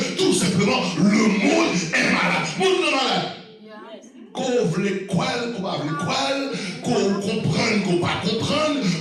tout simplement le monde est malade. Le monde est malade. Qu'on veut quoi, qu'on va quoi, qu'on comprenne, qu'on pas comprendre,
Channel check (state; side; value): identical; both; correlation 1.00